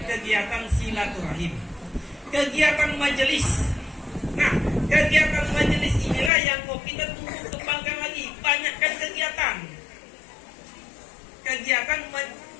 kegiatan silaturahim, kegiatan majelis. Nah, kegiatan majelis inilah yang mau kita tumbuh kembangkan lagi, banyakkan kegiatan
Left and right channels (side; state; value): right; drops out; at 6.3 s